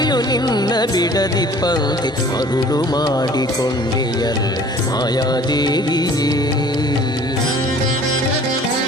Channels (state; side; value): normal; both; correlation 0.50